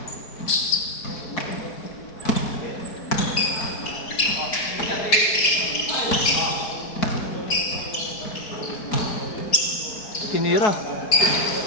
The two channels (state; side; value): late; right; 4.6 ms